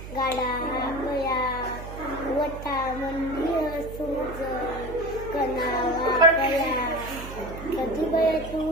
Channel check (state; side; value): noise; right; hum, 11 dB below the sound